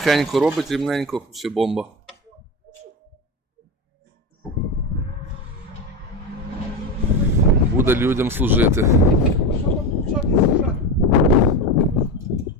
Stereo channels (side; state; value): both; normal; correlation 0.20